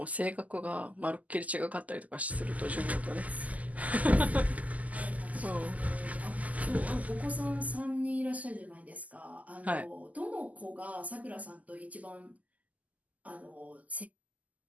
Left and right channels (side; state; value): left; late; 0.075 ms